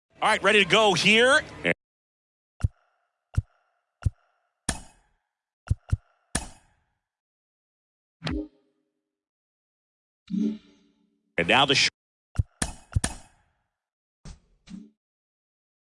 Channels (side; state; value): both; identical; correlation 1.00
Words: All right, ready to go here. And now the